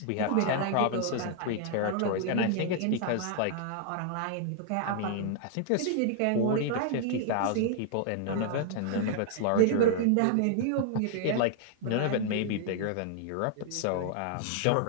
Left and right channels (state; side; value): different; both; correlation -0.01